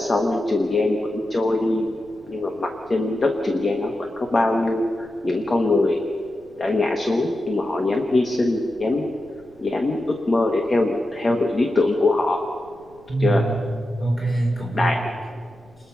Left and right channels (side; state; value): left; noise; rumble, 30 dB below the sound